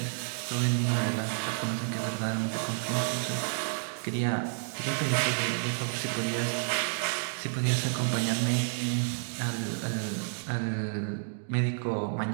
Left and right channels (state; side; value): silent; left; digital silence